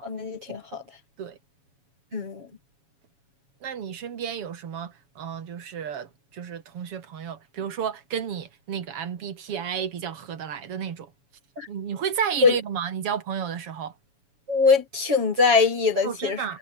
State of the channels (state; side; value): late; left; 7.2 ms